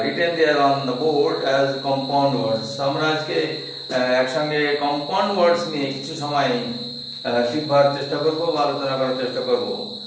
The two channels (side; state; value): both; identical; correlation 1.00